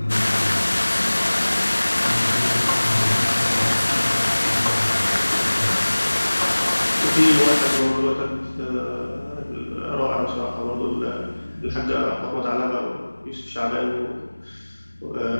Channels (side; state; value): both; inverted; correlation -1.00